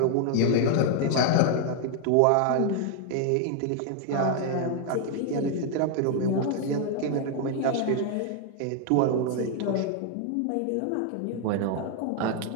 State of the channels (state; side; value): different; both; correlation 0.00